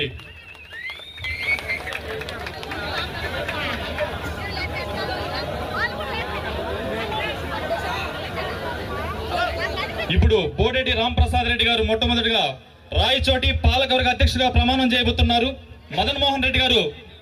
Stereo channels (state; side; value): identical; both; correlation 1.00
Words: ఇప్పుడు బోరెడ్డి రాంప్రసాద్ రెడ్డి గారు మొట్టమొదటిగా రాయచోటి పాలకవర్గ అధ్యక్షుడిగా ప్రమాణం చేయబోతున్నారు. మదన్ మోహన్ రెడ్డి గారు